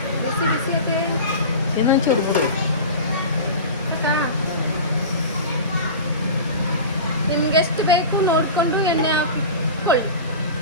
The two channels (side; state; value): both; inverted; correlation -0.31